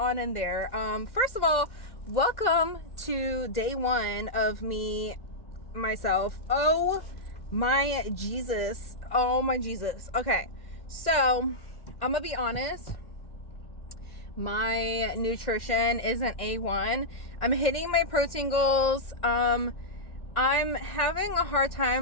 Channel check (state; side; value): late; right; 1.8 ms